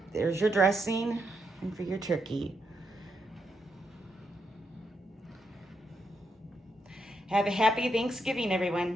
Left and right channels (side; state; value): both; normal; correlation 0.81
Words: there's your dressing and for your turkey. Have a happy Thanksgiving,